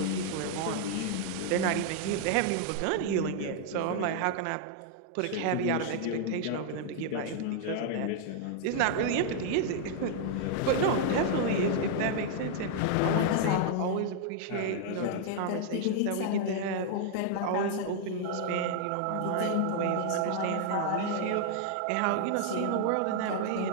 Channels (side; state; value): both; different; correlation 0.00